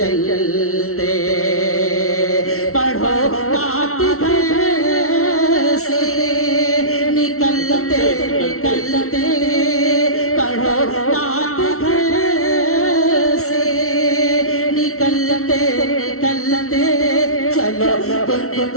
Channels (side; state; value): right; late; 0.63 ms